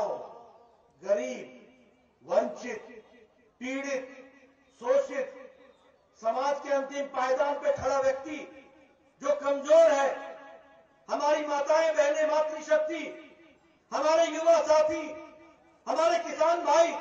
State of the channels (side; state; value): both; identical; correlation 1.00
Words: गरीब, वंचित, पीड़ित, शोषित, समाज के अंतिम पायदान पे खड़ा व्यक्ति जो कमजोर है, हमारी माताएं बहनें, मातृशक्ति, हमारे युवा साथी, हमारे किसान भाई,